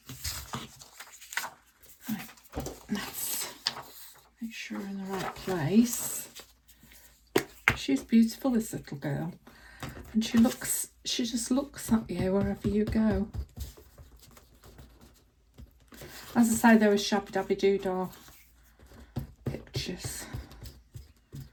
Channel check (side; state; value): both; identical; correlation 1.00